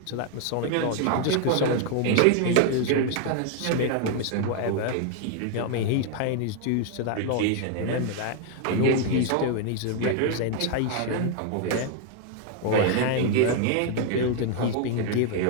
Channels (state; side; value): different; both; correlation 0.00